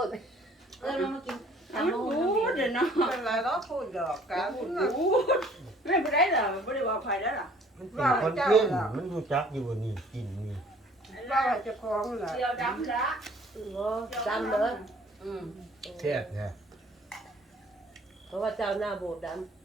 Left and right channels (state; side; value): normal; both; correlation 0.55